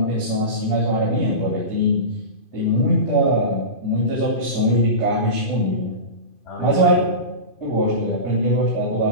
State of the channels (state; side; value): late; right; 2.5 ms